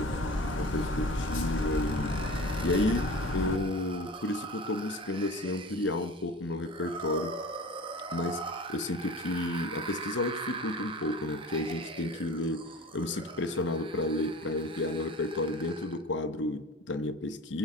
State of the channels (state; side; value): normal; both; correlation 0.37